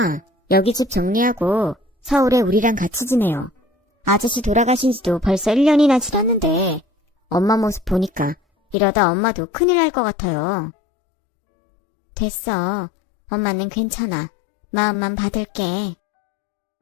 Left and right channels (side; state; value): right; drops out; at 8.8 s